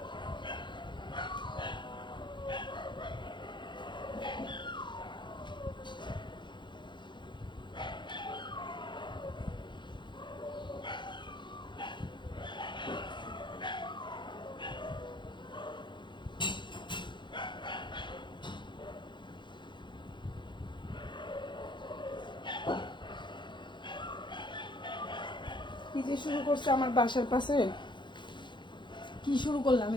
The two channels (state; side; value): late; right; 0.23 ms